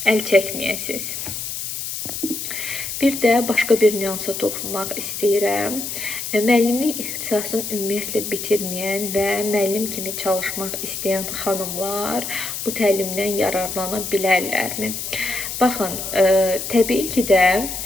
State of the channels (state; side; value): noise; left; hiss, 5 dB below the sound